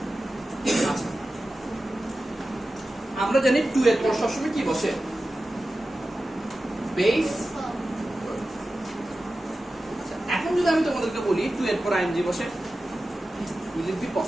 আচ্ছা, আমরা জানি টু এর পর সবসময় কি বসে, বেস। এখন যদি আমি তোমাদেরকে বলি টু এর পর আইএনজি বসে, will it be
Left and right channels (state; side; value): normal; both; correlation 0.94